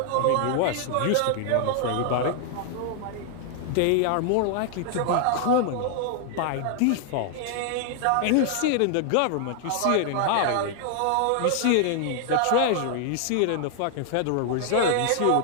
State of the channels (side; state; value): both; different; correlation 0.00